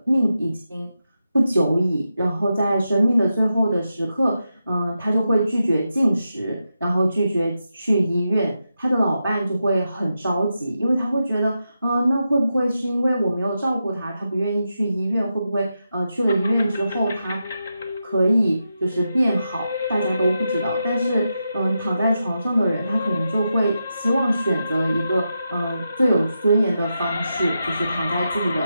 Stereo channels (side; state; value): both; inverted; correlation -0.87